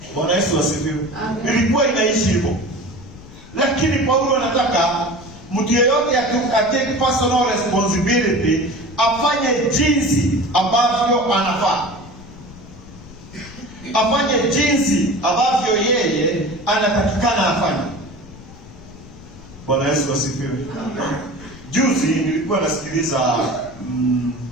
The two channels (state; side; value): noise; left; rumble, 18 dB below the sound